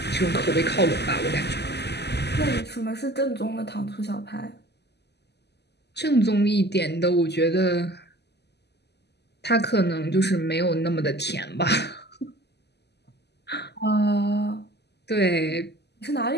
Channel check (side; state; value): right; late; 0.49 ms